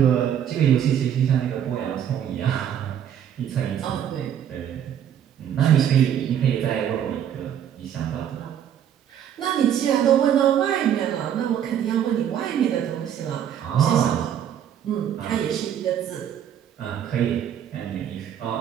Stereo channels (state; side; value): quieter; left; 9.6 dB